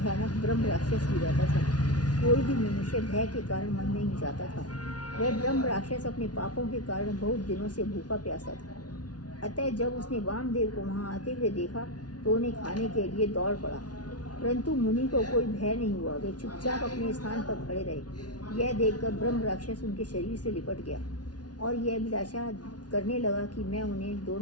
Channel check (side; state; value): right; late; 0.69 ms